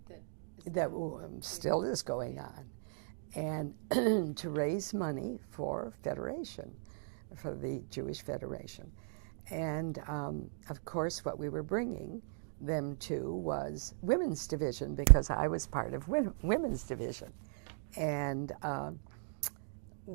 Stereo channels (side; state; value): left; silent; digital silence